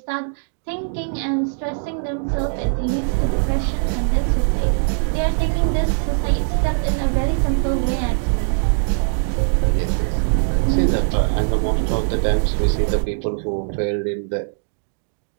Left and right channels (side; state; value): left; silent; digital silence